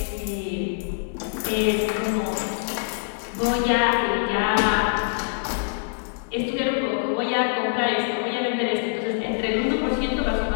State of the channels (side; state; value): right; silent; 62 dB below the other